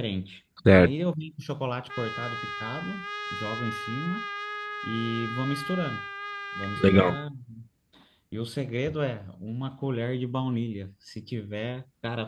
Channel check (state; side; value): identical; both; correlation 1.00